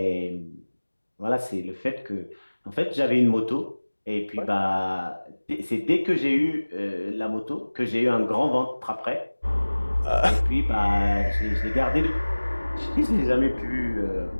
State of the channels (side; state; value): both; inverted; correlation -1.00